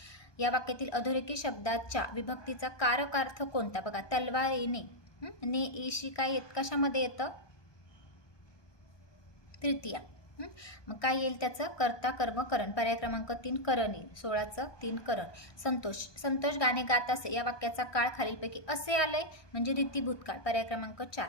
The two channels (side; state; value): right; late; 1.2 ms